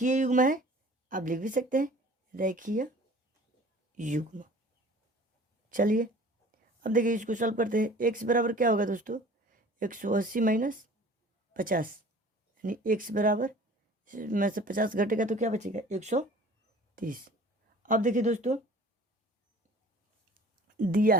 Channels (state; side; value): normal; both; correlation 0.47